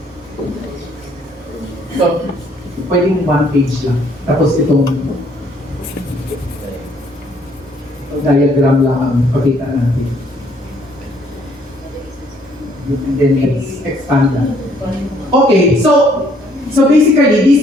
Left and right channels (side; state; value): both; normal; correlation 0.65